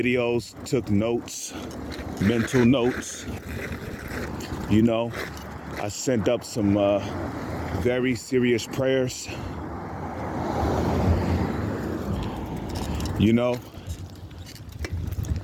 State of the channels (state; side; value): identical; both; correlation 1.00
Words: took notes, mental notes. I sent up some very serious prayers.